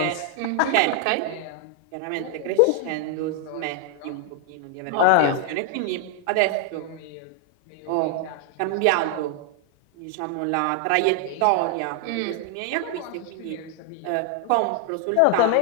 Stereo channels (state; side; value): different; both; correlation 0.00